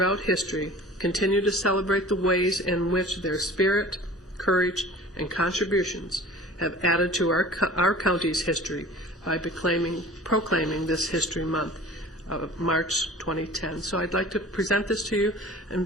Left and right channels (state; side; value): normal; both; correlation 0.42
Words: history, continue to celebrate the ways in which their spirit, courage, and contributions have added to our county's history by proclaiming this History Month of March 2010. So I'd like to present this to you,